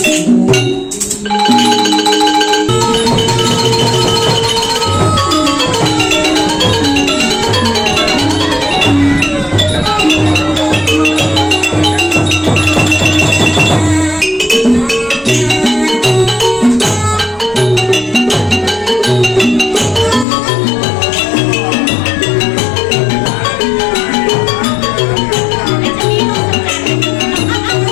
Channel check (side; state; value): right; drops out; at 20.2 s